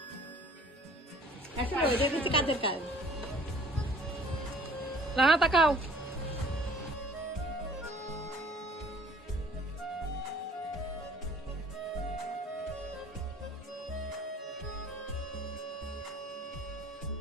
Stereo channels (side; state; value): both; normal; correlation 0.53